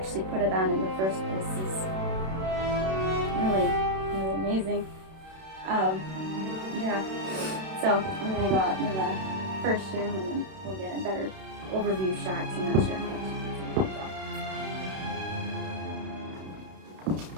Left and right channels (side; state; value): left; late; 32 ms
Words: put it on in the first place is really, really amazing. Yeah. So I'm gonna go out into the first room and then we'll get a better overview shot. I'm not sure how much you can